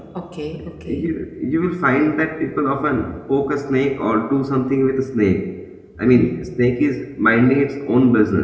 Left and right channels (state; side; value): identical; both; correlation 1.00